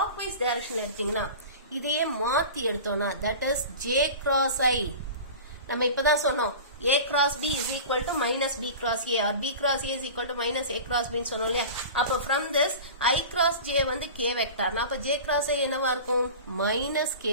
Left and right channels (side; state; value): both; inverted; correlation -0.35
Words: directionல எடுத்தீங்கன்னா இதையே மாத்தி எடுத்தோம்னா that is j cross I. நம்ம இப்பதான் சொன்னோம் a cross b is equal to minus b cross a or b cross a is equal to minus a cross b ன்னு சொன்னோம் இல்லையா? அப்ப from this I cross j வந்து k வெக்டார், அப்ப j cross I என்னவா இருக்கும், minus k